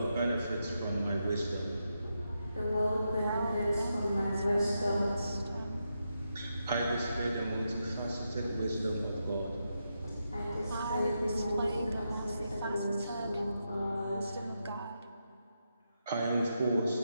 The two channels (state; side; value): inverted; both; correlation -0.85